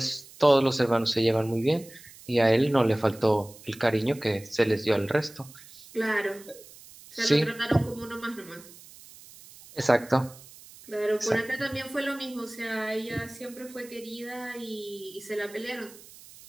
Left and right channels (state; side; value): noise; right; hiss, 20 dB below the sound